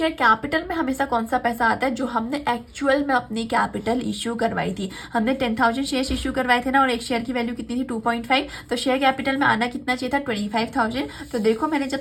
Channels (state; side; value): identical; both; correlation 1.00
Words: कैपिटल में हमेशा कौन सा पैसा आता है, जो हमने एक्चुअल में अपनी कैपिटल इश्यू करवाई थी। हमने 10,000 शेयर इश्यू करवाए थे ना, और एक शेयर की वैल्यू कितनी थी, 2.5। तो शेयर कैपिटल में आना कितना चाहिए था, 25,000। तो देखो मैंने जब